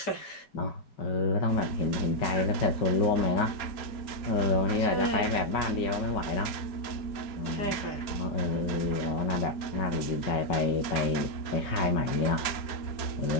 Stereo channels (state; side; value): late; right; 4.3 ms